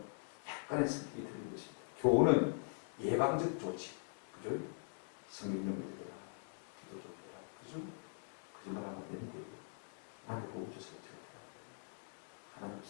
약간의 성격이 틀린 것입니다. 교훈은 예방적 조치, 그죠? 성경 좀 읽어라, 기도 좀 해라, 그죠? 거짓말하면 안 되는데 남의 복을 줘서는 절대 안 돼요. 하나님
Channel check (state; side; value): silent; right; digital silence